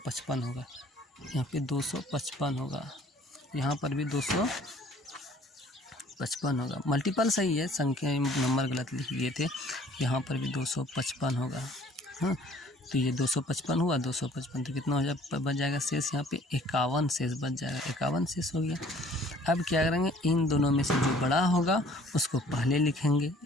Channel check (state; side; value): normal; both; correlation 0.55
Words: होगा, यहाँ पे 255 होगा, यहाँ पर भी 255 होगा। मल्टीपल सही है, संख्या नंबर गलत लिख दिए थे। यहाँ पर भी 255 होगा। हाँ, तो ये 255 हुआ, 255 तो कितना हो जाए, बच जाएगा शेष, यहाँ पे 51 शेष बच जाएगा। 51 शेष हो गया। अब क्या करेंगे, इन दोनों में से जो बड़ा होगा उसको पहले लिखेंगे।